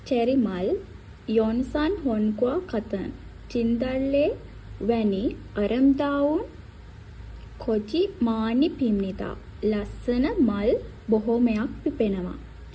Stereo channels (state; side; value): identical; both; correlation 1.00